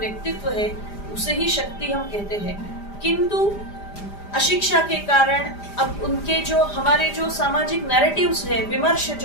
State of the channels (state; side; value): late; right; 5.0 ms